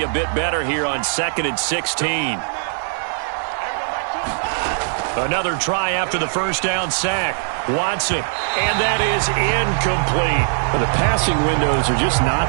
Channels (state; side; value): silent; left; digital silence